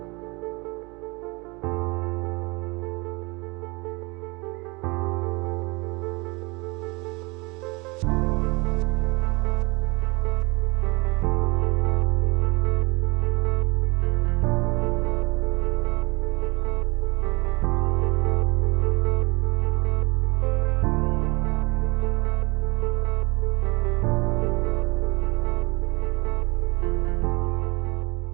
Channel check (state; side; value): quieter; left; 26.8 dB